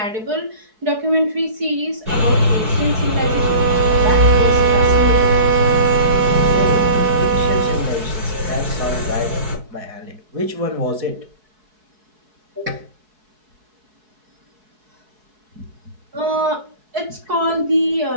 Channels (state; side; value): late; left; 4.7 ms